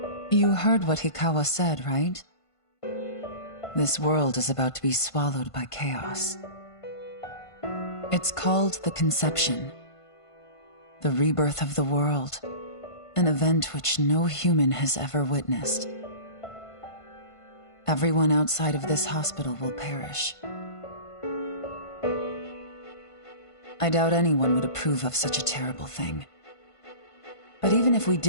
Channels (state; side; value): late; right; 1.5 ms